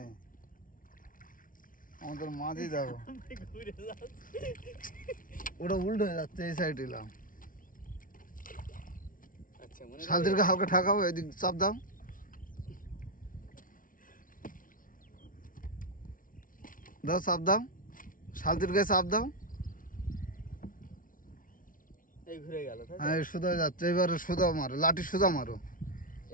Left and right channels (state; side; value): late; right; 0.39 ms